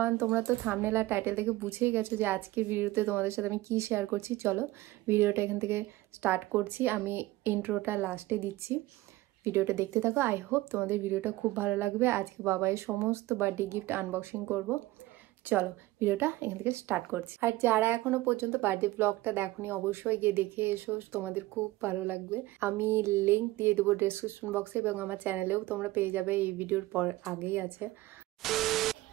তোমরা তো thumbnail আর title থেকে বুঝেই গেছো যে আজকের ভিডিওতে তোমাদের সাথে আমি কি শেয়ার করছি। চলো ভিডিওটা এখান থেকে স্টার্ট করছি। আমি ইন্ট্রোটা লাস্টে দিচ্ছি, ভিডিওটা দেখতে থাকো। আই হোপ তোমাদের ভিডিওটা খুব ভালো লাগবে। আজকে বাবাইয়ের সমস্ত বার্থডে গিফট আনবক্সিং করব। চলো ভিডিওটা এখান থেকে স্টার্ট করছি। আর যারা এখনো পর্যন্ত বার্থডে ব্লগটা দেখোনি অবশ্যই গিয়ে দেখে এসো, তোমাদের খুব ভালো লাগবে। আমি লিঙ্ক দিয়ে দেবো ডেসক্রিপশন বক্সে এবং আমার চ্যানেলেও তোমরা পেয়ে যাবে, এই ভিডিওর পর আগেই আছে।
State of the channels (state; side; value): quieter; left; 18.4 dB